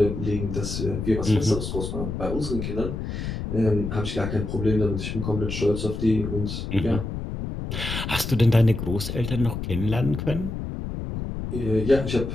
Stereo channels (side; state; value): left; noise; rumble, 5 dB below the sound